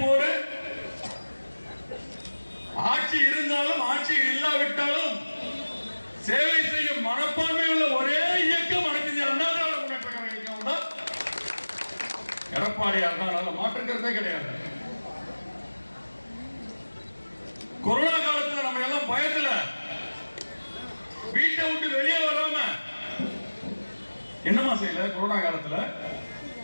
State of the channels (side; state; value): both; inverted; correlation -1.00